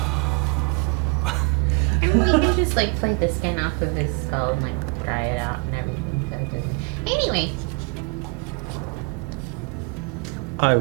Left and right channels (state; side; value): quieter; left; 31.4 dB